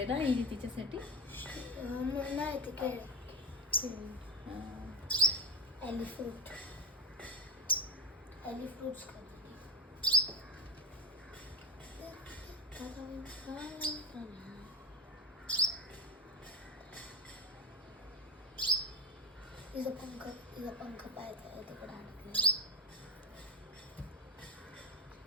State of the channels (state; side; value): normal; both; correlation 0.15